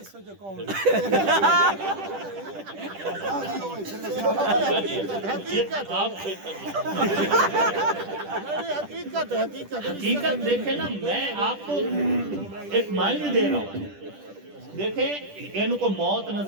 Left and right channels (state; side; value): late; left; 10 ms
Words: حقیقت دیکھیں نا، میں آپ کو ایک معنی دے رہا ہوں، دیکھیں ان کو موت